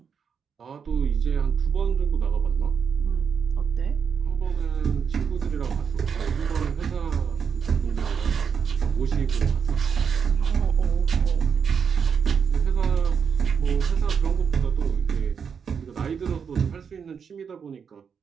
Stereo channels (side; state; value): left; quieter; 6.7 dB